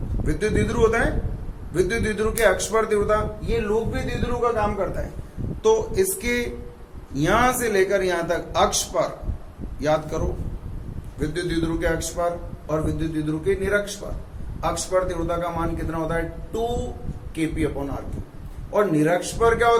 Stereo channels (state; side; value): identical; both; correlation 1.00